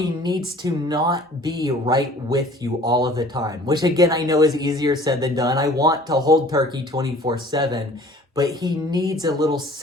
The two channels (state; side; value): normal; both; correlation 0.50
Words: needs to not be right with you all of the time, which again, I know is easier said than done. I want to hold Turkey 24/7, but he needs a little